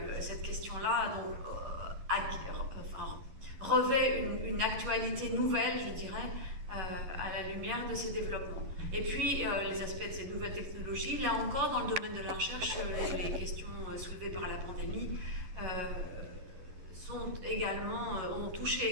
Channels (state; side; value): late; left; 11 ms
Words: Cette question-là revêt une actualité nouvelle, je dirais, à la lumière de ces développements. Et puis les aspects de ces nouvelles technologies, là encore dans le domaine de la recherche, les questions soulevées par la pandémie ont touché